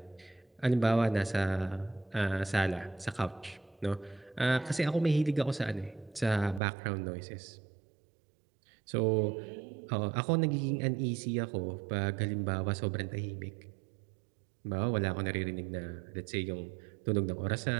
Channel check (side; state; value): left; drops out; at 6.6 s